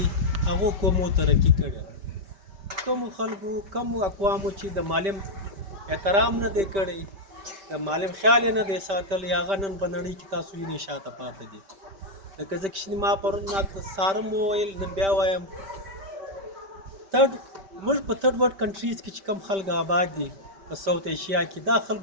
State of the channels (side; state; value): left; late; 5.1 ms